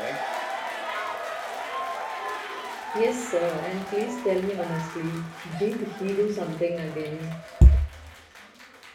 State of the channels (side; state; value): both; identical; correlation 1.00